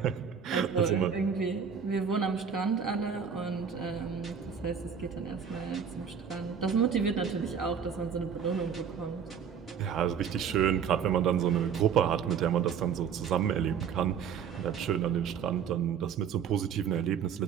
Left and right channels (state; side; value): quieter; left; 7.3 dB